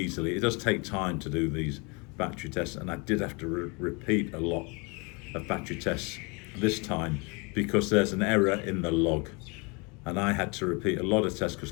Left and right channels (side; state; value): right; quieter; 30.2 dB